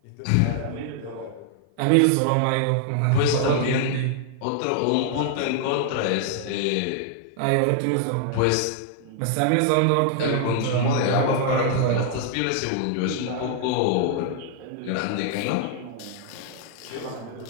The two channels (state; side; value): different; both; correlation 0.00